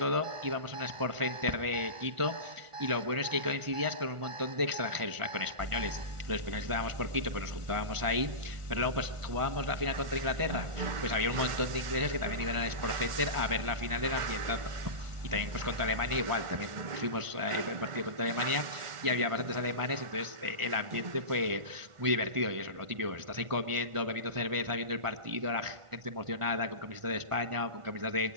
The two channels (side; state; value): left; late; 1.4 ms